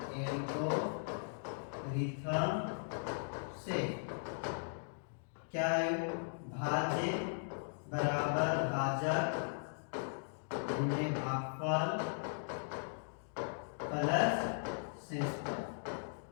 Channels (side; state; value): right; silent; digital silence